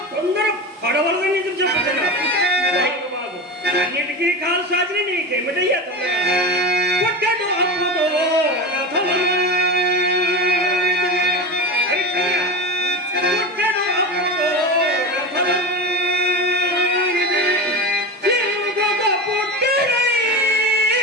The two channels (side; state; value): both; normal; correlation 0.24